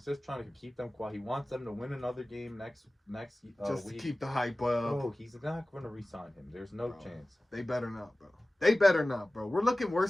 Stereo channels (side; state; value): both; normal; correlation 0.97